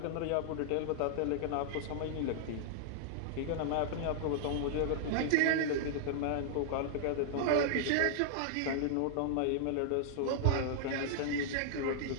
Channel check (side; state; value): both; different; correlation -0.01